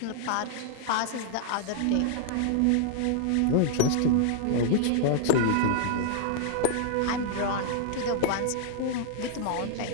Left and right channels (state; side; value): different; both; correlation -0.01